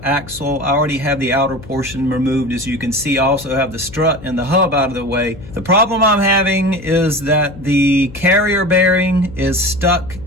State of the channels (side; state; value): left; noise; hum, 17 dB below the sound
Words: axle. I already have the outer portion removed. As you can see, I also have the strut and the hub out of the way. The problem I'm having is that the carrier bearing is stuck